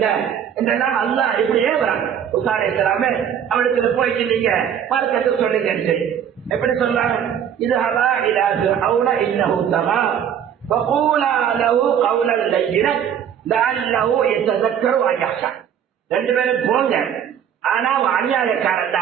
என்றெல்லாம் அல்லாஹ் இப்படியே வராங்க. மூசா அலைஹிஸ்ஸலாமே அவனுக்கு போயிட்டு நீங்க மார்க்கத்தை சொல்லுங்க. எப்படி சொல்றாங்க? இது ஹவா இலா ஃபிரௌன இன்னஹு தகா ஃபகூலா லஹு கௌலன் லய்யினன் லஅல்லஹு யததக்கரு வ யஹ்ஷா. ரெண்டு பேரும் போங்க, ஆனா அநியாயக்காரன்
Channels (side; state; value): left; quieter; 8.9 dB